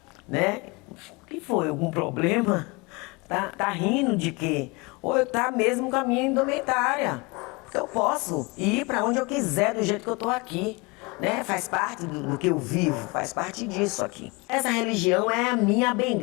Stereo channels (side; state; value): right; quieter; 27.0 dB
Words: né? O que foi? Algum problema? Tá rindo de quê? Ou eu tá mesmo com a minha indumentária. Eu posso ir para onde eu quiser, do jeito que eu tô aqui. Né? Faz parte do que eu vivo, faz parte disso aqui. Essa religião é a minha